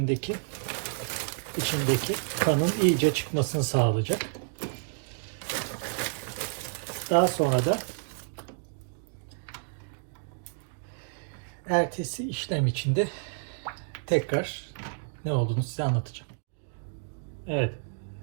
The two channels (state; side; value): silent; left; digital silence